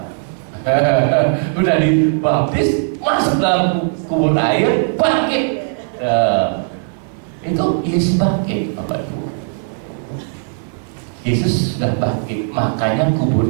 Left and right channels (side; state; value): left; silent; digital silence